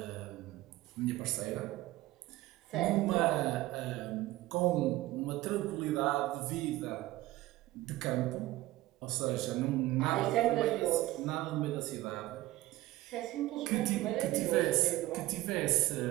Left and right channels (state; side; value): quieter; left; 17.0 dB